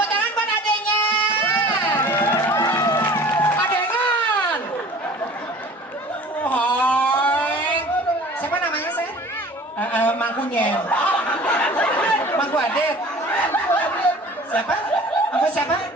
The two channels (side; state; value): both; normal; correlation 0.46